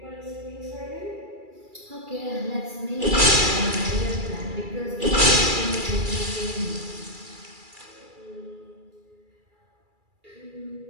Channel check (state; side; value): late; left; 2.3 ms